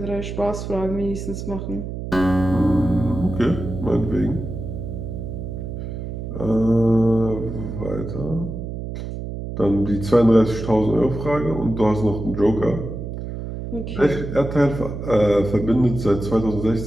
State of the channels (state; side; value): noise; right; hum, 7 dB below the sound